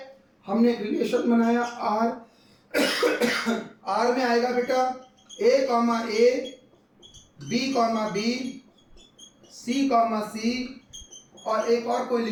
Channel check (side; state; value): both; identical; correlation 1.00